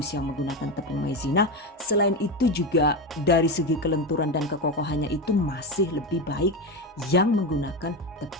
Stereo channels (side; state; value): both; normal; correlation 0.17